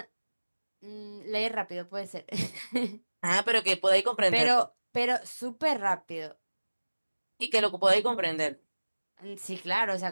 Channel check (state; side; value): inverted; both; correlation -1.00